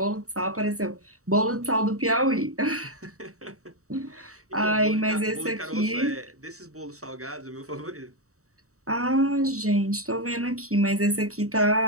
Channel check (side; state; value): left; late; 0.65 ms